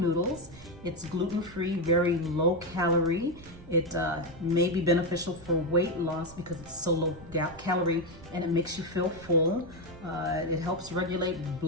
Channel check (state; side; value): noise; right; rumble, 19 dB below the sound